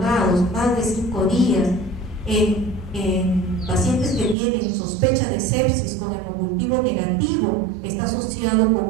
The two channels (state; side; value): drops out; left; at 4.4 s